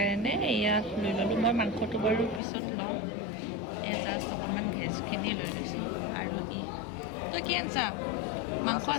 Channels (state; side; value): drops out; right; at 2.4 s